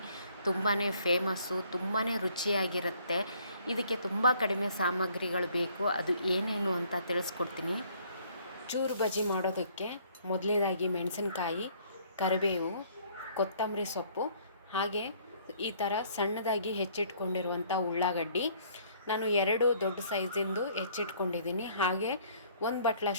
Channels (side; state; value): both; inverted; correlation -0.61